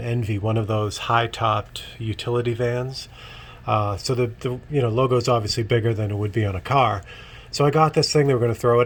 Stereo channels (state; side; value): identical; both; correlation 1.00